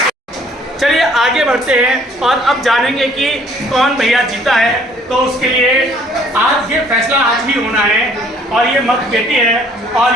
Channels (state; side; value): normal; both; correlation 0.59